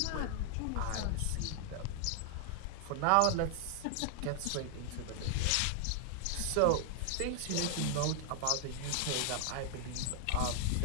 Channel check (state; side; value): different; both; correlation 0.00